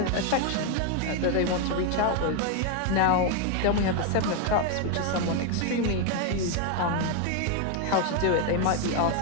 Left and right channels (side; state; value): both; different; correlation 0.01